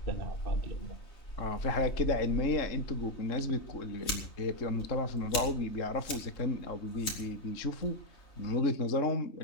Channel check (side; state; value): right; late; 3.2 ms